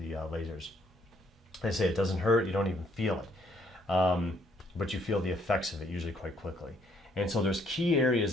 lasers. I say it doesn't hurt. You don't even feel it, but you feel the effects of it usually quite quickly. And so there's key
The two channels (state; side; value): normal; both; correlation 0.68